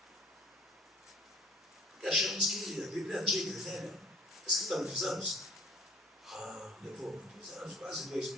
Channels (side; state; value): both; normal; correlation 0.51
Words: Porque achamos que a Bíblia é antiga, é velha, escrita há muitos anos. Levou muitos anos, quase